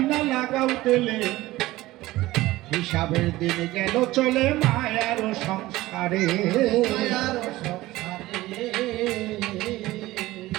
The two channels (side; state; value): left; quieter; 17.7 dB